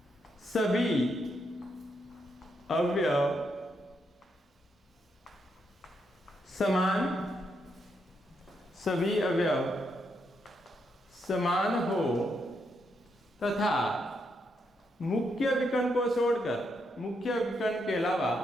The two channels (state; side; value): normal; both; correlation 0.79